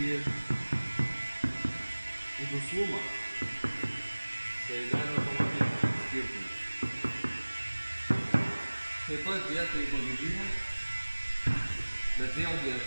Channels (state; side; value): inverted; both; correlation -1.00